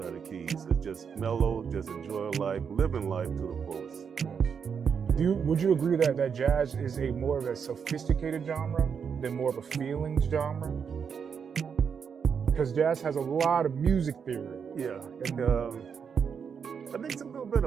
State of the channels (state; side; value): quieter; left; 6.7 dB